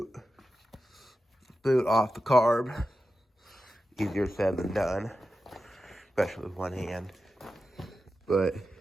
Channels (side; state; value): both; normal; correlation 0.91